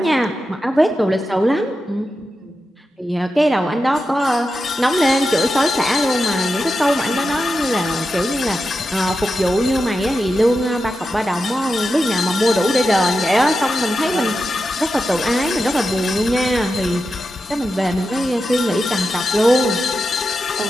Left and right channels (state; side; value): normal; both; correlation 0.90